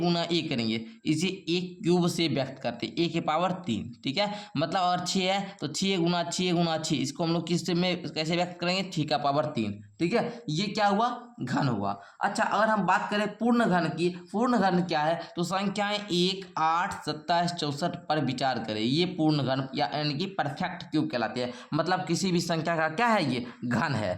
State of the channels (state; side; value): identical; both; correlation 1.00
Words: ए करेंगे। इसे एक क्यूब से व्यक्त करते हैं, ए के पावर 3। ठीक है, मतलब अगर 6 है तो 6 गुना 6, इसको हम लोग किस में कैसे व्यक्त करेंगे, 6 का पावर 3। ठीक है, ये क्या हुआ, घन हुआ। अच्छा, अगर हम बात करें पूर्ण घन की, पूर्ण घन क्या है, तो संख्याएं 1, 8, 27, 64 पर विचार करें। ये पूर्ण घन यानी कि परफेक्ट क्यूब कहलाते हैं। मतलब किसी भी संख्या का क्या है, ये घन है।